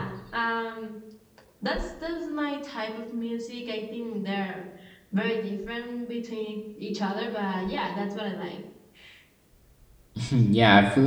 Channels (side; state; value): both; identical; correlation 1.00